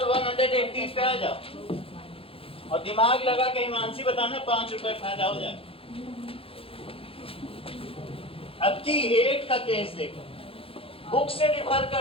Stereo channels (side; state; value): right; late; 0.27 ms